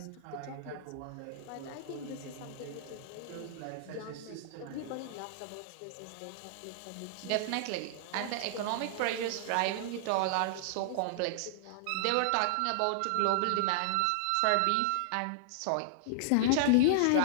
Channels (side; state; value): both; different; correlation -0.01